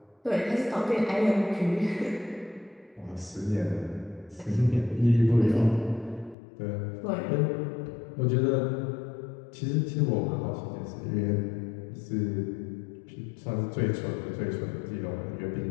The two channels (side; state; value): right; drops out; at 6.4 s